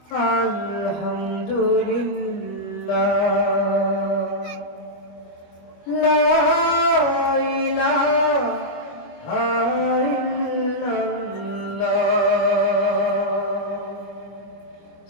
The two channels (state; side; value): late; right; 25 ms